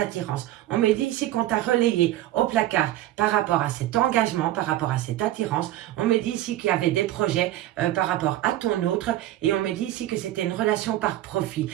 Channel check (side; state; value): left; quieter; 14.4 dB